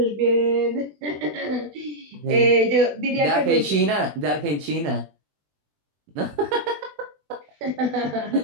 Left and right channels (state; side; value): late; left; 20 ms